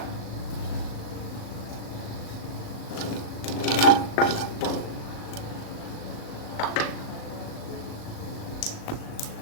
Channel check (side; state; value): right; late; 37 ms